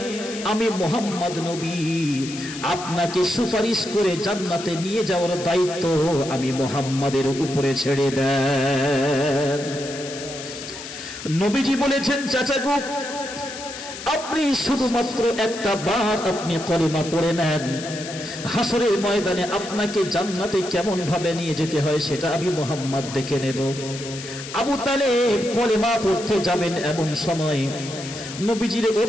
আমি মুহাম্মদ নবী আপনাকে সুপারিশ করে জান্নাতে নিয়ে যাওয়ার দায়িত্ব আমি মুহাম্মাদের উপরে ছেড়ে দেন। নবীজি বলেছেন, চাচা গো, আপনি শুধুমাত্র একটা বার আপনি কলেমা পড়ে নেন, হাসরের ময়দানে আপনাকে জান্নাতে কেমন ভাবে নিয়ে যেতে হয় সেটা আমি মুহাম্মদ দেখে নেব। আবু তালেব কলেমা পড়তে যাবেন এমন সময় নবীজির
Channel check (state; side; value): noise; left; hiss, 11 dB below the sound